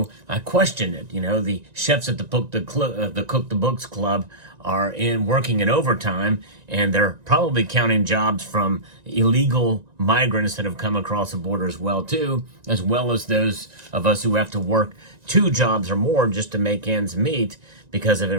I questioned it. The chefs at the Cook the Books Club are working in overtime, and they're probably counting jobs from illegal migrants that have come across the border as well as those of us who have to work 2 jobs or more just to make ends meet because of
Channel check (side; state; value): left; late; 1.9 ms